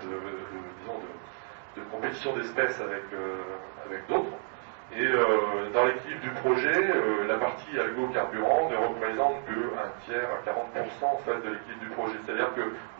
compétition d'espèces avec d'autres. Et dans l'équilibre du projet, la partie algo-carburant ne représente que un tiers à 40% en fait, de l'équilibre du projet. C'est-à-dire que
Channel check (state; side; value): silent; left; 57 dB below the other